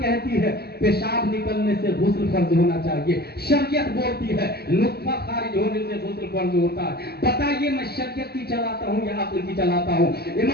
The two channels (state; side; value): late; right; 0.46 ms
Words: ہے پیشاب نکلنے سے غسل فرض ہونا چاہیے، شریعت بولتی ہے نطفہ خارج ہونے سے غسل فرض ہوتا ہے۔ بتائیے میں شریعت کی چلاتا ہوں یا عقل کی چلاتا ہوں؟